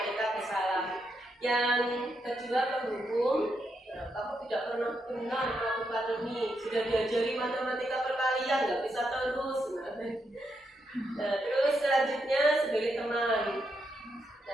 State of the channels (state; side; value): normal; both; correlation 0.81